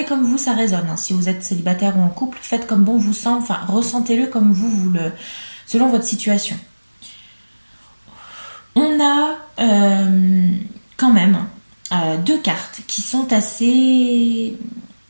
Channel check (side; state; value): both; inverted; correlation -1.00